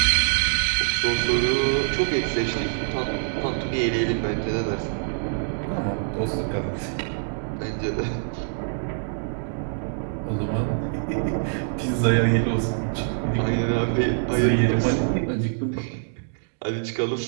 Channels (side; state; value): left; silent; digital silence